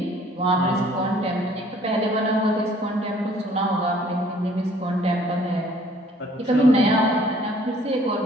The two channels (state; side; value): normal; both; correlation 0.57